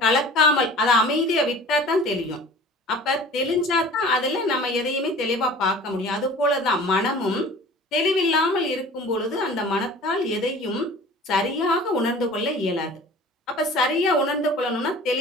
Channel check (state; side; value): normal; both; correlation 0.43